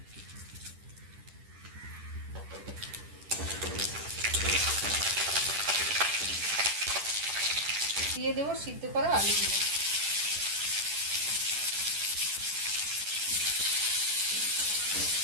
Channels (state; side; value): late; left; 10 ms